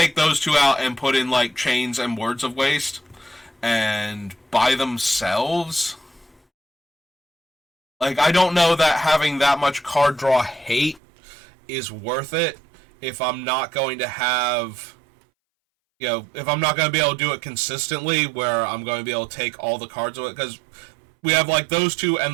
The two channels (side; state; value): left; drops out; at 11.0 s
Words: those two out and put in, like, Chains and Words of Waste, and by themselves, like, I don't know that having that much card draw hate is worth it if I'm not going to have, if I'm not going to be able to do it consistently, where I'm going to be able to take all the cards of it, because we have, like, those two